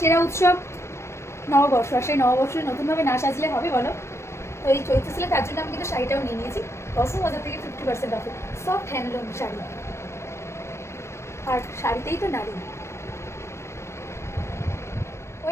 সেরা উৎসব নববর্ষ, আর সেই নববর্ষে নতুনভাবে না সাজলে হবে বলো? তো এই চৈত্র সেলে তার জন্য আমি কিন্তু শাড়িটাও নিয়ে নিয়েছি কসমো বাজার থেকে 50% অফে। সফট হ্যান্ডলুম শাড়ি, আর শাড়িতেই তো নারী।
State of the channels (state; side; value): late; right; 0.13 ms